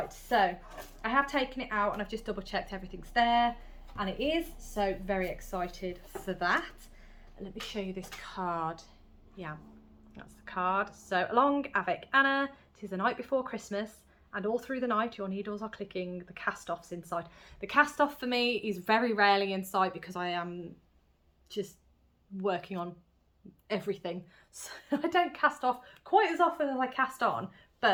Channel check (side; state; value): both; identical; correlation 1.00